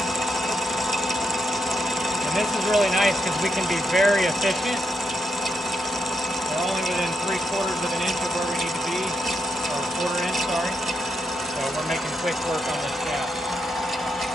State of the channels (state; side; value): normal; both; correlation 0.82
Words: And this is really nice because we can be very efficient. We're only within 3/4 of an inch of where we need to be, or 1/4 inch, sorry. So we're making quick work on this shaft.